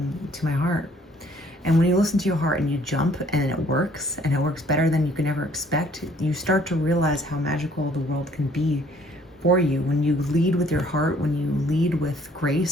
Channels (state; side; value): normal; both; correlation 0.60